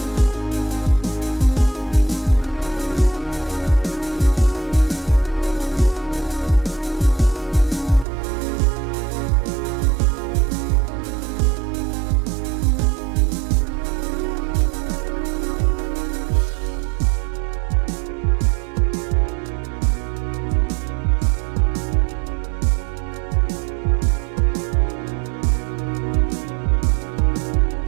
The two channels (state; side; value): drops out; left; at 8.1 s